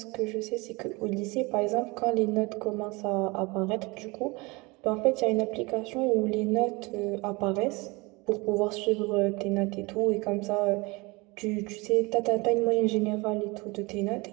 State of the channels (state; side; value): quieter; left; 25.5 dB